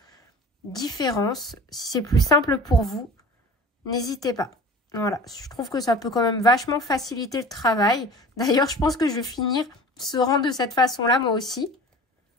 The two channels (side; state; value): both; normal; correlation 0.39